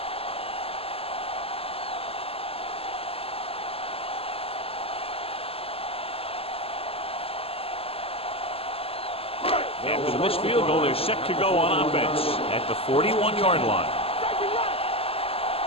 After the missed field goal, they're set to go on offense at the 41-yard line.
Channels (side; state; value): right; late; 0.28 ms